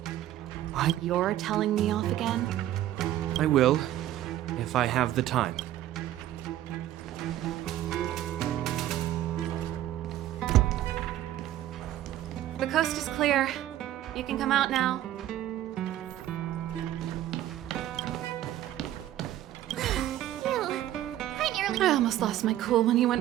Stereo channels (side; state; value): left; quieter; 13.1 dB